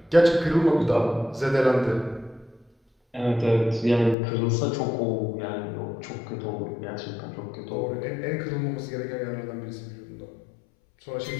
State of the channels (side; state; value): right; drops out; at 4.2 s